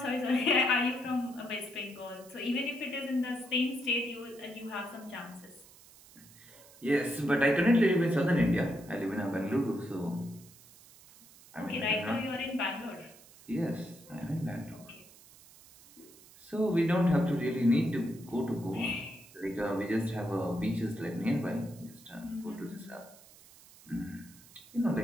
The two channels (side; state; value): right; noise; hiss, 23 dB below the sound